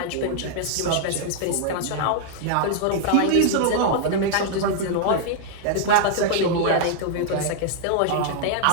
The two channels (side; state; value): both; different; correlation -0.01